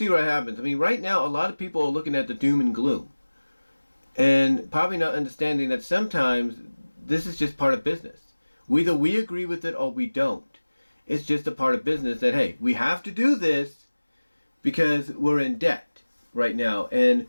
what happens. I mean, right now, a lot of people are looking at the doom and gloom and probably not understanding that sometimes this is just part of business. Either we agree with it or we don't. It's just a part of business that, hey, we have to do this because we're in debt right now. And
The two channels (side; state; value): both; inverted; correlation -1.00